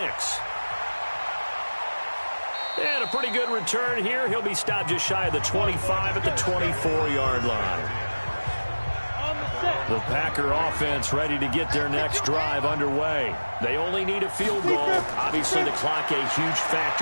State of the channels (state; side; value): inverted; both; correlation -1.00